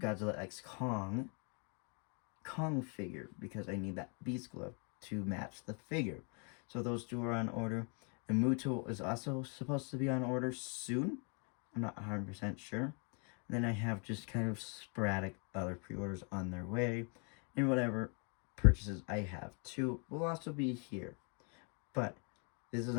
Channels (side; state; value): right; quieter; 37.1 dB